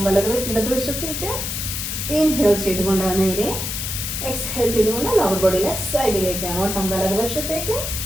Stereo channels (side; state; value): left; noise; hiss, 4 dB below the sound